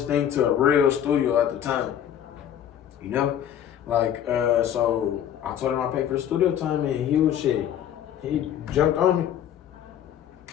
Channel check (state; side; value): quieter; right; 10.0 dB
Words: thing to a real studio at the time. You know? Like, so I told him I paid for the studio time and he was shit. He jumped on me.